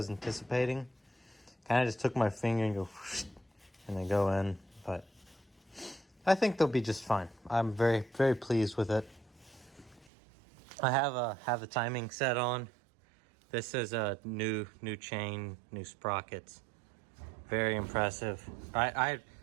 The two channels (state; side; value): drops out; left; at 10.1 s